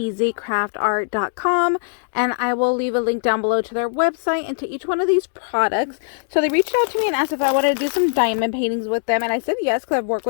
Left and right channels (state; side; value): silent; right; digital silence